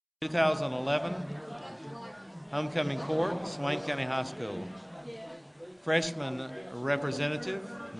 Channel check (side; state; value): both; identical; correlation 1.00